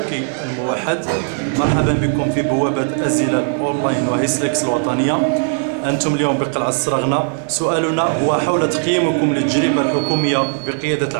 الموحد، مرحبا بكم في بوابة أزيلة أونلاين وهيسلكس الوطنية. أنتم اليوم بقلعة السرغنة. سؤالنا هو حول تقييمكم للتجربة الحكومية بقيادة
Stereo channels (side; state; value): left; silent; 62 dB below the other